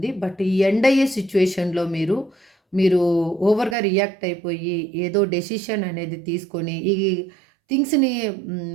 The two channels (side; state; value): left; drops out; at 3.8 s